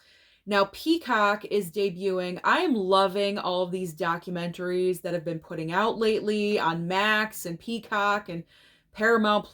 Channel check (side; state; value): both; identical; correlation 1.00